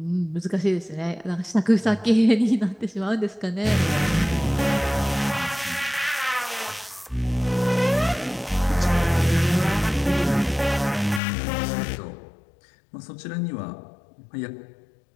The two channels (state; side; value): drops out; right; at 11.2 s